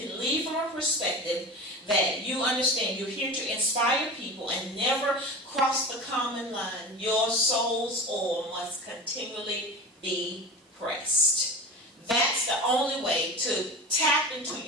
lead from a perspective that you understand you're here to inspire people and never cross the common line, your soul's oil must continually be pressed. That's the only way to tap into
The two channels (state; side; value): normal; both; correlation 0.31